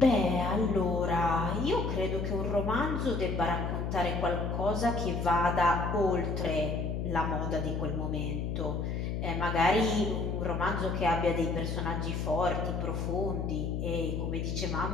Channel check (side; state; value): left; noise; hum, 2 dB below the sound